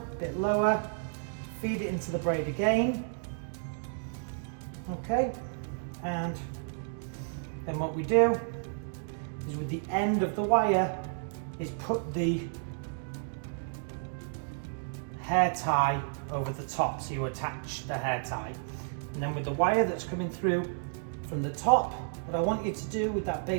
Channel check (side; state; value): left; silent; digital silence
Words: bit lower, feed it into the braid again, okay? And then what we do is with the end of the wire is put the hair tie over the top, so you attach the hair tie. And then with the wire that's coming through from the top, what I want you to do with that